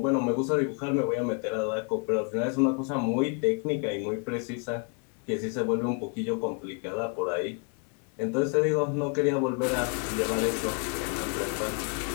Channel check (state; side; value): quieter; right; 37.8 dB